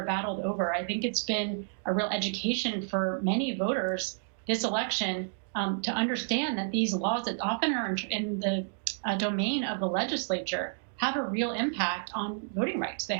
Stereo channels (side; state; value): left; silent; digital silence